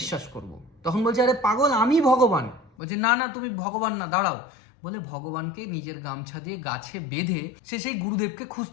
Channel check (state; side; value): drops out; right; at 2.7 s